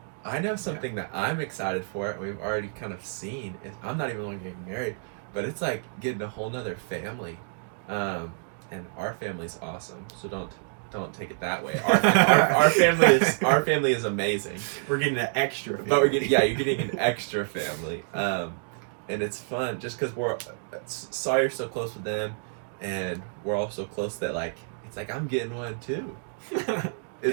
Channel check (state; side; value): silent; left; digital silence